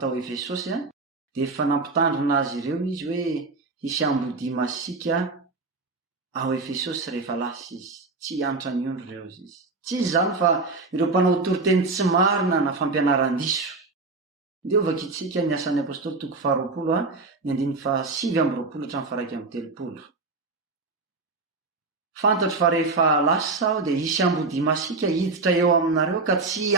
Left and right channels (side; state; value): left; quieter; 3.8 dB